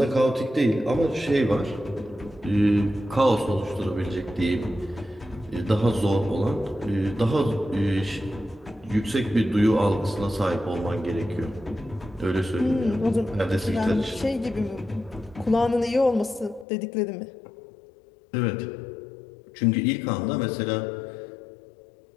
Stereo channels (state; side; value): drops out; right; at 16.7 s